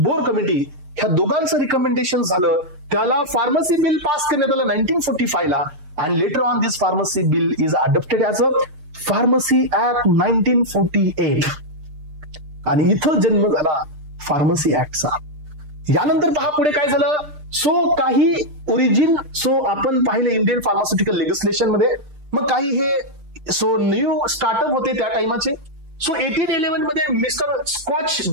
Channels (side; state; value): left; late; 6.6 ms